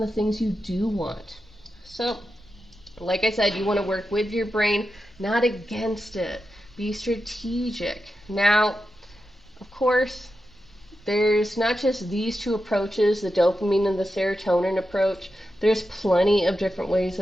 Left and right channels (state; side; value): normal; both; correlation 0.89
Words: things you do want. So, like I said, you want to work with your brain, not against it. Be strategic. Now, of course, there's not just these two approaches, the dopamine and the serotonin approach. There's plenty of different ways